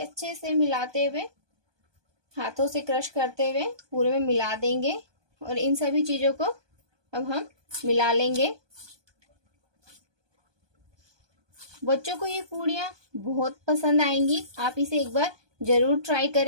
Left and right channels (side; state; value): left; late; 1.2 ms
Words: अच्छे से मिलाते हुए, हाथों से क्रश करते हुए पूरे में मिला देंगे। और इन सभी चीजों को अब हम मिला लेंगे। बच्चों को ये पूड़ियाँ बहुत पसंद आएंगी। आप इसे एक बार जरूर ट्राई